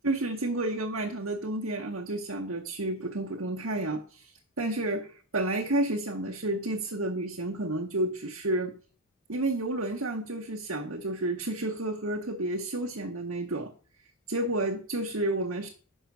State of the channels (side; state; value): both; normal; correlation 0.06